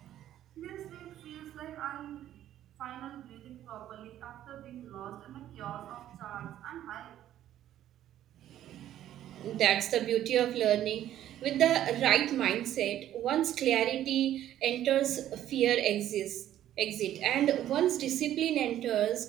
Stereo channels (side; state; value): left; quieter; 12.1 dB